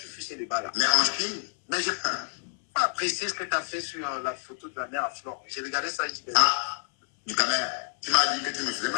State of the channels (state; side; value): silent; right; 59 dB below the other